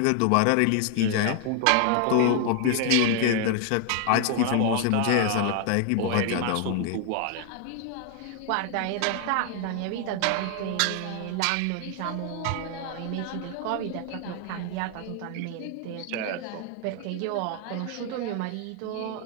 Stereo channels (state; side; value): different; both; correlation 0.00